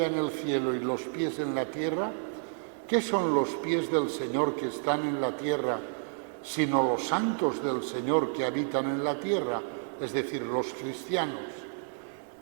en el cielo y los pies en la tierra, ¿qué son los pies del Señor que están en la tierra, sino los santos del Señor que habitan en la tierra, es decir, los cristianos?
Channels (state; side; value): silent; left; 55 dB below the other